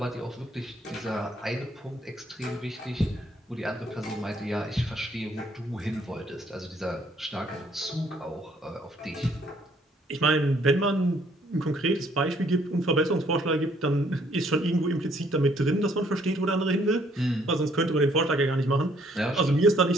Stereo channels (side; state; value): both; normal; correlation 0.65